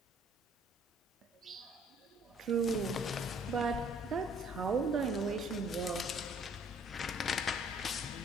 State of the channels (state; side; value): normal; both; correlation 0.59